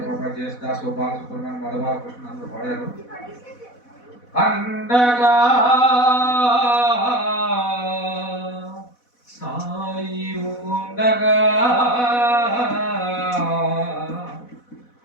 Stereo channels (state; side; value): late; right; 4.1 ms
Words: జయదాస్, బాలసుబ్రహ్మణ్యం, మధుబాలకృష్ణ అందరూ పడారు. అండగా సాయి ఉండగా